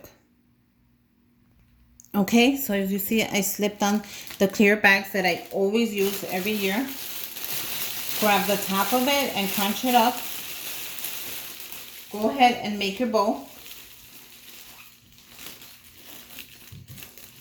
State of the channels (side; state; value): both; identical; correlation 1.00